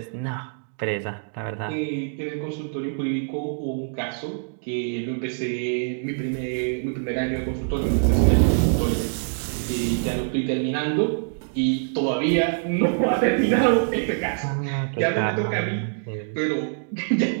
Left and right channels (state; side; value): silent; left; digital silence